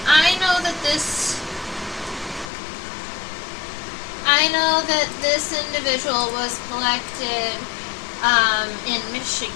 I know that this individual was collected in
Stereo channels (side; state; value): right; drops out; at 2.5 s